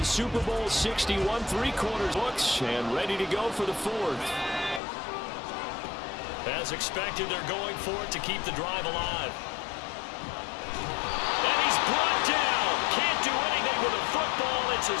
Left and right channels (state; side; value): drops out; right; at 4.8 s